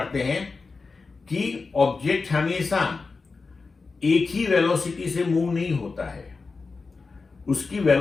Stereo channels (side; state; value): right; quieter; 4.3 dB